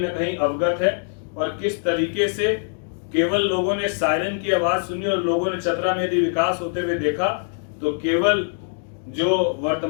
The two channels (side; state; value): right; silent; 64 dB below the other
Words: कहीं अवगत है और किस तरीके से केवल लोगों ने सायरन की आवाज सुनी और लोगों ने चतरा में यदि विकास होते हुए देखा तो केवल जो